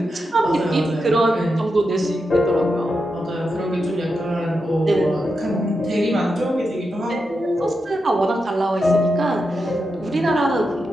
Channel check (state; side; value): normal; both; correlation 0.87